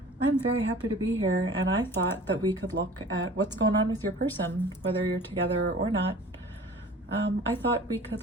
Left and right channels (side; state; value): both; normal; correlation 0.44